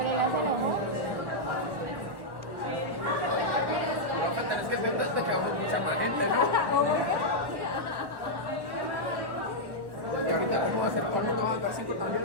Es que te quedó mucha más gente, ¿no? Y ahorita como vamos a hacer, todo el mundo va a dar 5 también,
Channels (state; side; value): late; left; 1.1 ms